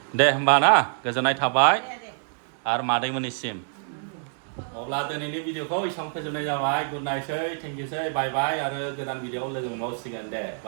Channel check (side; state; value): left; silent; digital silence